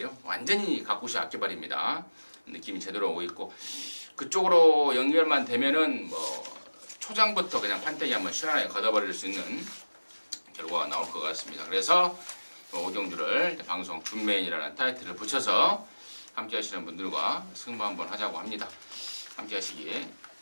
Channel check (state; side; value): inverted; both; correlation -1.00